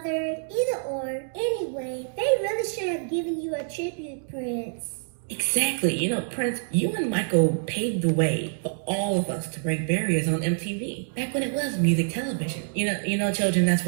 either or. Anyway, they really should have given you a tribute, Prince. Exactly. You know, Prince, you and Michael paved the way for all of us to break barriers on MTV. Back when it was music television. You know, children, that's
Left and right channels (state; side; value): silent; left; digital silence